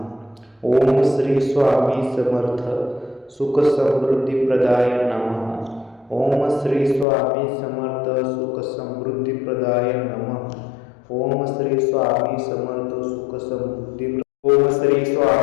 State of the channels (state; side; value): drops out; right; at 7.1 s